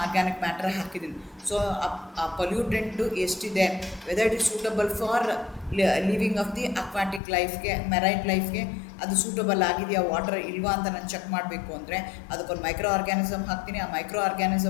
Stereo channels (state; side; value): drops out; right; at 7.2 s